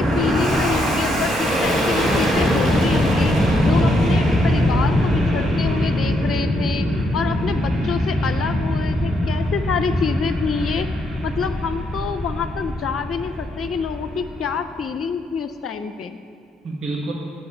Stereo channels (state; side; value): normal; both; correlation 0.76